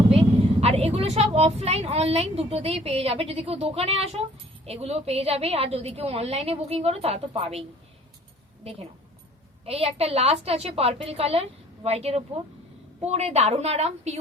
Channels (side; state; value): both; normal; correlation 0.54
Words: আর এগুলো সব অফলাইন অনলাইন দুটোতেই পেয়ে যাবে। যদি কেউ দোকানে আসো এগুলো পেয়ে যাবে, আর যদি কেউ অনলাইনে বুকিং করো তারা তো পাবেই। দেখে নাও, এই একটা লাস্ট আছে পার্পল কালার হোয়াইটের ওপর, পরে দারুণ আরাম,